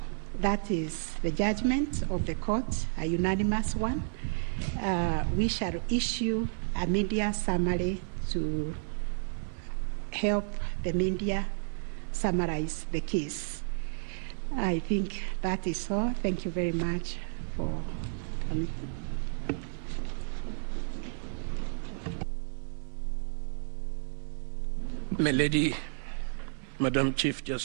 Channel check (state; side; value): silent; left; 57 dB below the other